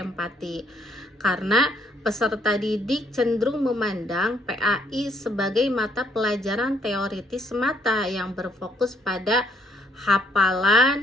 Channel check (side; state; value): both; normal; correlation 0.67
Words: Karena peserta didik cenderung memandang PAI sebagai mata pelajaran teoritis semata yang berfokus pada